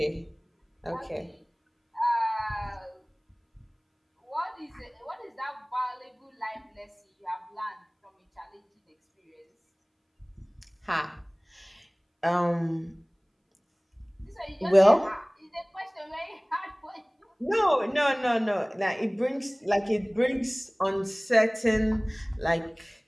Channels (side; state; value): both; identical; correlation 1.00